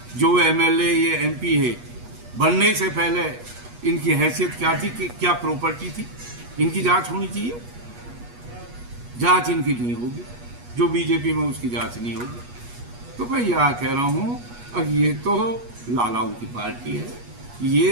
जो MLA ये MP है, बनने से पहले इनकी हैसियत क्या थी, कि क्या प्रॉपर्टी थी, इनकी जांच होनी चाहिए। जांच इनकी नहीं होगी, जो बीजेपी में उसकी जांच नहीं होगी। तो मैं यह कह रहा हूँ, अब ये तो लालाओं की पार्टी है,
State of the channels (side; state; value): left; late; 8.3 ms